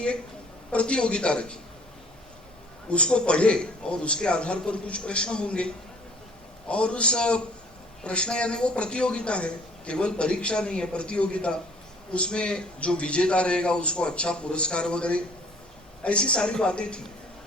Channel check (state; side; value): normal; both; correlation 0.54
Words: एक प्रतियोगिता रखी। उसको पढ़े और उसके आधार पर कुछ प्रश्न होंगे, और उस प्रश्न यानी वो प्रतियोगिता है, केवल परीक्षा नहीं है, प्रतियोगिता। उसमें जो विजेता रहेगा उसको अच्छा पुरस्कार वगैरह, ऐसी सारी बातें थी।